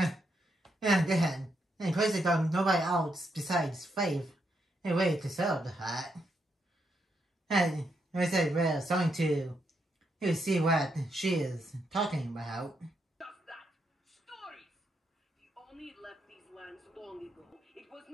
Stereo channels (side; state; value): both; normal; correlation 0.79